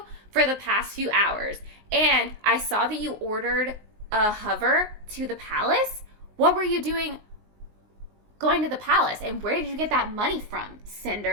for the past few hours. And I saw that you ordered a hover to the palace. What were you doing going to the palace? And where did you get that money from,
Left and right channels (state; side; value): late; left; 19 ms